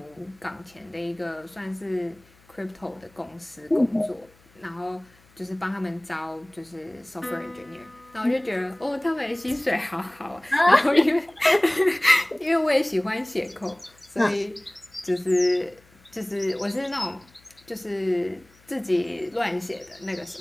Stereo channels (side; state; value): left; noise; hum, 29 dB below the sound